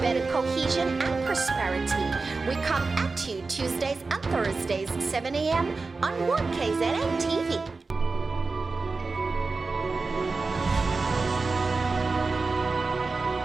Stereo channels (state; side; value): quieter; left; 4.0 dB